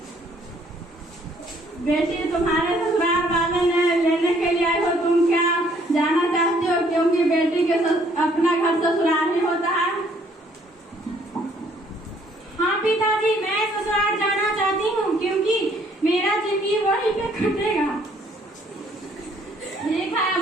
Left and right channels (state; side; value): normal; both; correlation 0.63